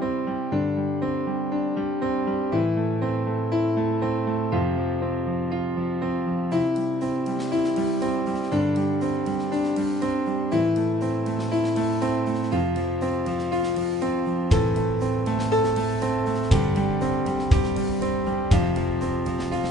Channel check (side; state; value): both; normal; correlation 0.62